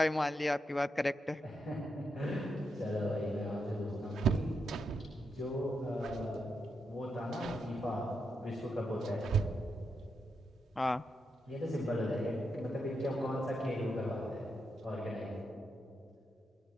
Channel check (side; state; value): both; normal; correlation 0.84